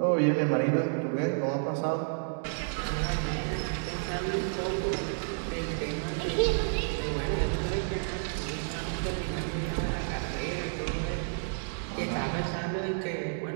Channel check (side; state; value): left; silent; digital silence